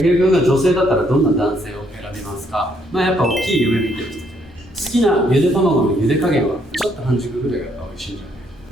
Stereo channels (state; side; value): normal; both; correlation 0.70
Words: 井君が女性だったらどんな男性を選びますか？まあやっぱ大きい夢見てる人じゃない。好きなゆで卵のゆで加減はちょっと半熟ぐらいがやっぱ美味しいんじゃな